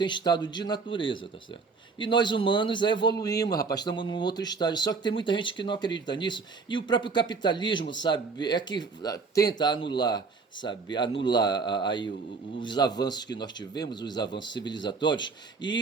estado de natureza, tá certo? E nós humanos evoluímos, rapaz, estamos num outro estágio. Só que tem muita gente que não acredita nisso. E o próprio capitalismo, sabe, é que tenta anular, sabe, aí os avanços que nós tivemos, os avanços civilizatórios,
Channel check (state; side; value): quieter; left; 4.7 dB